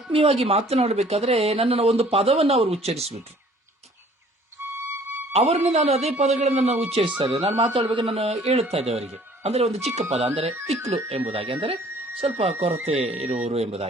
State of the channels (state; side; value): normal; both; correlation 0.55